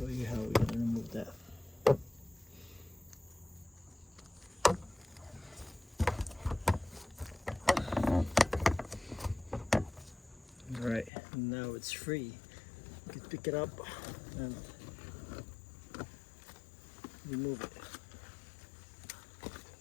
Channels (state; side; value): drops out; right; at 11.1 s